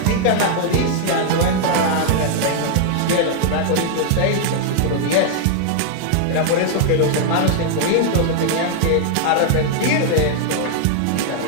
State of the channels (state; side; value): different; both; correlation 0.00